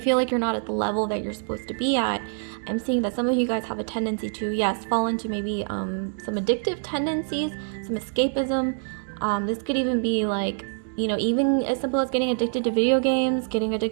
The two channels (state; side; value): silent; left; digital silence